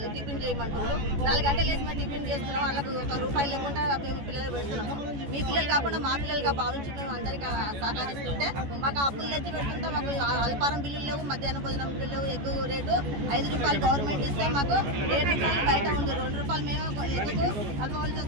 టిఫిన్ చేయమంటున్నారు. 4 గంటలు వేసి మేము టిఫిన్ చేస్తున్నాం. వాళ్ళకు ₹1 లేకుండా మేము పిల్లలకు పెడుతున్నాము. మీ పిల్లలు కాకుండా మా పిల్లలుగా భావించి మేము అందరికీ సహకరిస్తుంటే మాకు అప్పులు తెచ్చి పెడుతుంటే మాకు అల్పారం బిల్లులు లేవు, మధ్యాహ్న భోజనం బిల్లు లేవు. ఎక్కువ రేటు ₹5 గవర్నమెంట్ ఇస్తే మాకు ₹7 బయట ఉంది. ₹2 మేము ఎక్కువ కలపవలసి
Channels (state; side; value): late; left; 14 ms